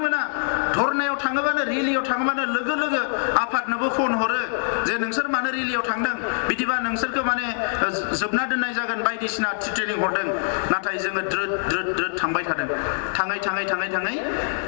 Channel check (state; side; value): silent; right; digital silence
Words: मोना। धरनायाव थाङोबानो, रेलियाव थाङोबानो लोगो लोगो आफादनोबो फन हरो जे नोंसोर मानो रेलियाव थांदों, बिदिबा नोंसोरखौ माने जोबना दोननाय जागोन बायदिसिना ट्रेनिं हरदों। नाथाय जोङो द्रोद थांबाय थादों। थाङै